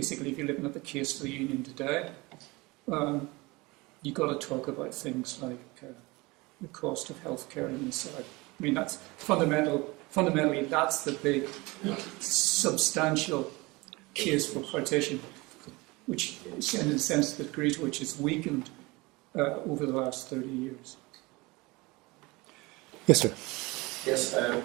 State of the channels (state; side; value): quieter; left; 23.6 dB